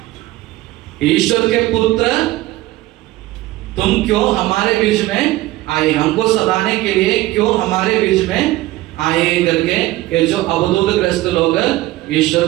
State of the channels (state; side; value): quieter; left; 17.5 dB